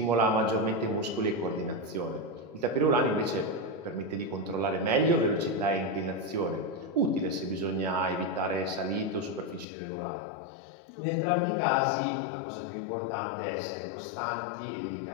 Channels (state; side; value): drops out; right; at 9.7 s